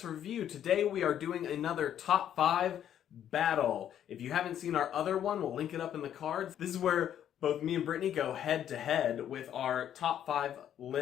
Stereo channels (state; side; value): quieter; right; 10.2 dB